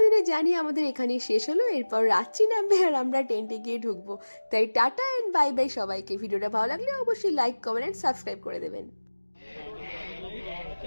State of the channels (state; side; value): inverted; both; correlation -1.00